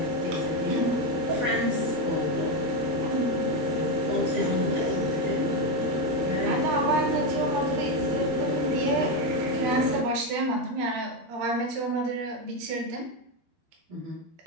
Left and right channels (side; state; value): left; late; 13 ms